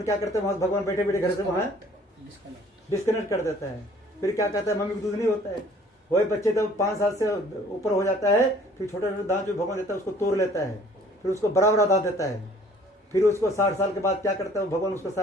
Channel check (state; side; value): normal; both; correlation 0.54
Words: क्या करते हैं, वहां भगवान बैठे बैठे घर से वहां डिस्कनेक्ट कर देता है। फिर क्या कहता है, मम्मी को दूध नहीं होता है। वही बच्चे जब 5 साल से ऊपर हो जाता है फिर छोटे छोटे दांत जो भगवान देता है उसको तोड़ लेता है, फिर उसको बड़ा बड़ा दांत देता है। फिर उसको 60 साल के बाद क्या करता है, भगवान उसको